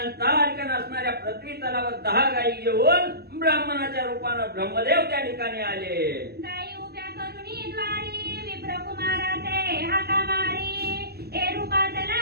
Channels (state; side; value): late; left; 0.47 ms